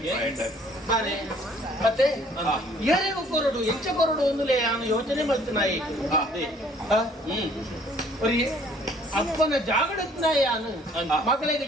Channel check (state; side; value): normal; both; correlation 0.58